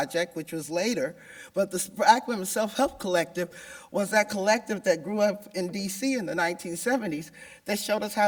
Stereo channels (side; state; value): both; identical; correlation 1.00